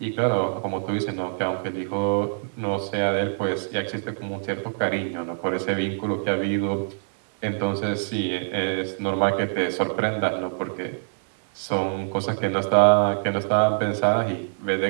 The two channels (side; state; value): left; silent; 62 dB below the other